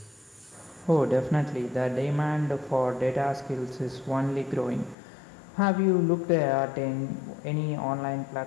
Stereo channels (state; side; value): drops out; right; at 5.0 s